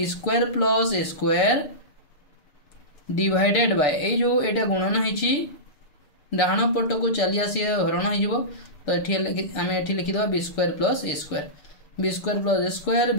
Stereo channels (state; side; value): late; right; 6.8 ms